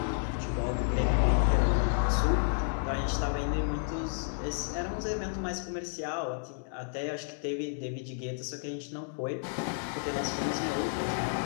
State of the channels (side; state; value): right; silent; digital silence